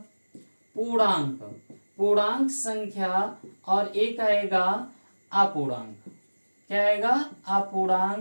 पूर्णांक संख्या, और एक आएगा अपूर्णांक। क्या आएगा,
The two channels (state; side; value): inverted; both; correlation -1.00